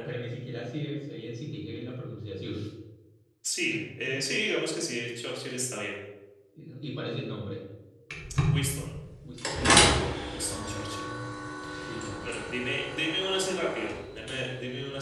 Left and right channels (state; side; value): identical; both; correlation 1.00